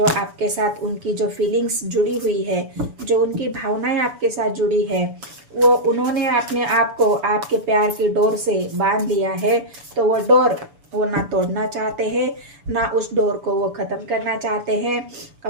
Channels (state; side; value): late; left; 7.0 ms